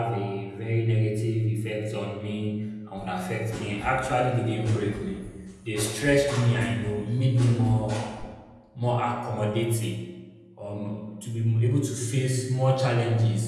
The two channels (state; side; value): identical; both; correlation 1.00